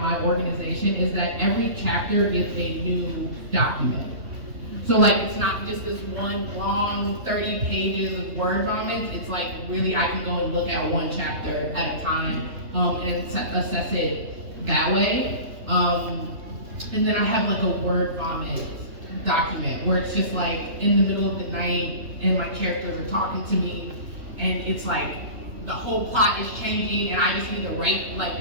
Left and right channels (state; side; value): late; left; 3.2 ms